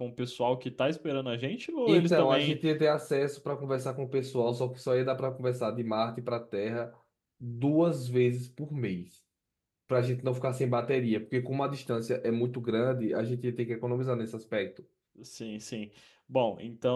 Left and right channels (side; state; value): both; identical; correlation 1.00